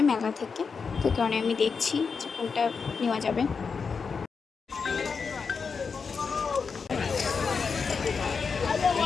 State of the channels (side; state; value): right; quieter; 5.4 dB